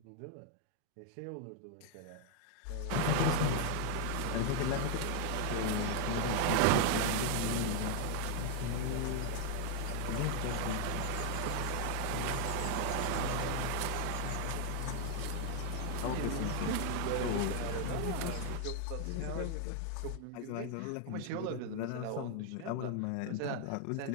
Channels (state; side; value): different; both; correlation 0.00